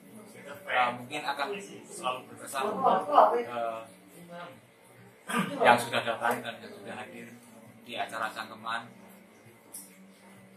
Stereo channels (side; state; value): both; identical; correlation 1.00